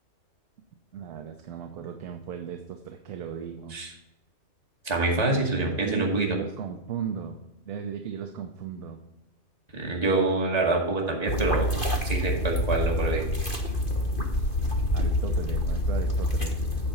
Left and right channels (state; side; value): late; right; 2.5 ms